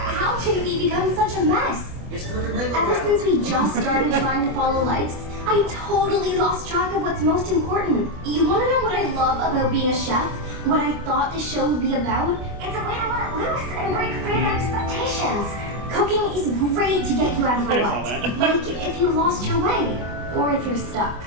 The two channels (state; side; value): late; left; 24 ms